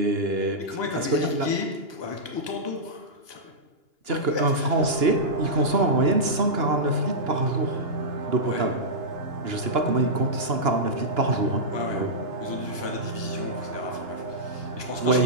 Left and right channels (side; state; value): left; late; 2.9 ms